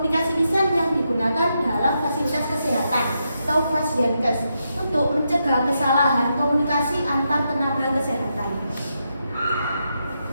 lisan yang digunakan dalam fasilitas kesehatan atau Pasienkes untuk mencegah kesalahan komunikasi antar tenaga kesehatan.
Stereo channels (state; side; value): inverted; both; correlation -0.84